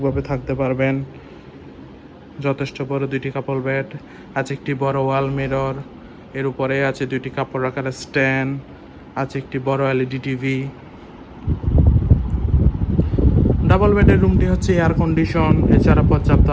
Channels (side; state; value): both; identical; correlation 1.00